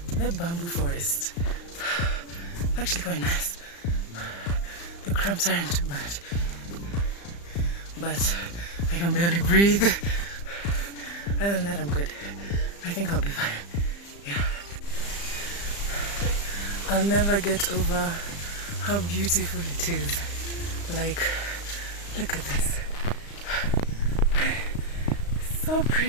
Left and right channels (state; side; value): late; right; 35 ms